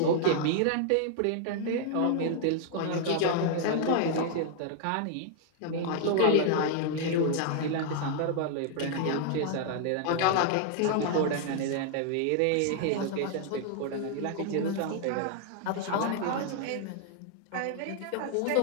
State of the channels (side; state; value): both; different; correlation 0.00